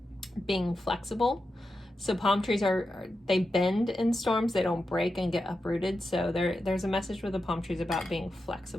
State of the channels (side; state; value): both; normal; correlation 0.89